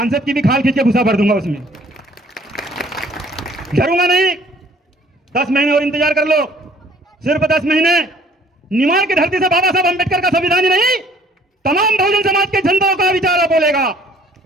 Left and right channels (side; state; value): both; normal; correlation 0.57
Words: की भी खाल खींच के घुसा भर दूंगा उसमें। डरूंगा नहीं। 10 महीने और इंतजार कर लो, सिर्फ 10 महीने। निमाड़ की धरती से बाबा साहब अंबेडकर का संविधान ही नहीं, तमाम बहुजन समाज के जनताओं का विचार बोलेगा।